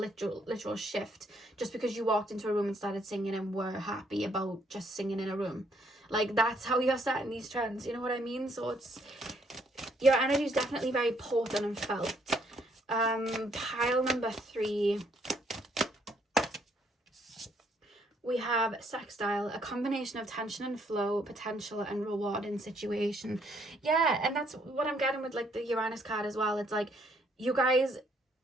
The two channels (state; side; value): normal; both; correlation 0.69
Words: shift just because you walked into a room and started singing and were happy about just singing in a room. Like that's how you're setting these trends, you know what I mean? So it's, your energy is definitely very potent and felt. Pile number 3, we have sextile, a combination of tension and flow, potential and rewarding situation. Yeah, and that's what I'm getting with like the Uranus card as well. It's like you guys